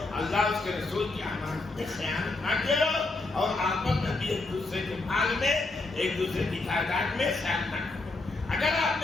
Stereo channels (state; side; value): quieter; right; 3.2 dB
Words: اللہ اس کے رسول کی امانت میں خیانت نہ کرو، اور آپس میں بھی ایک دوسرے کے مال میں، ایک دوسرے کی جائیداد میں خیانت نہ کرو۔ اگر